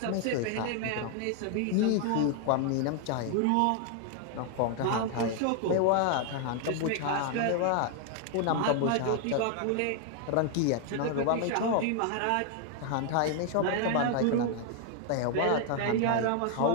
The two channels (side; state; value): both; different; correlation 0.00